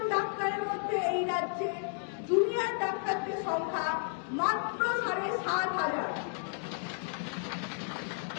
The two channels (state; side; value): silent; right; 56 dB below the other